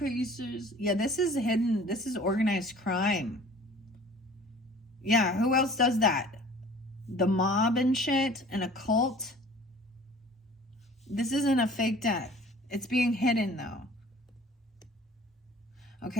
Yeah, this is hidden. This is organized crime. Yeah, who else does that? The mob and shit, and a cult. This isn't a fake death. It's being hidden, though.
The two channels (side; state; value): both; normal; correlation 0.48